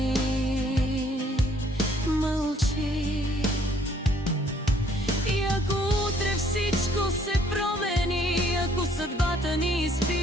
мълчи. И ако утре всичко се промени, ако съдбата ни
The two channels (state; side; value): normal; both; correlation 0.63